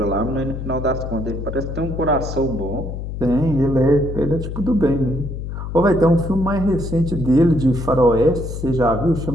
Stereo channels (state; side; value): noise; left; hum, 6 dB below the sound